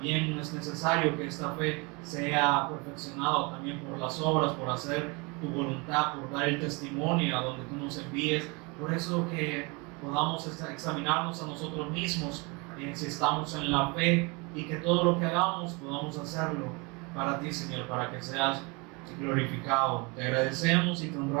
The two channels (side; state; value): left; quieter; 28.8 dB